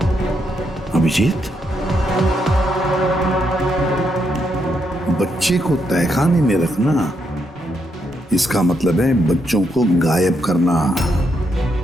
अभिजीत, बच्चे को तहखाने में रखना, इसका मतलब है बच्चों को गायब करना।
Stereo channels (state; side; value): normal; both; correlation 0.79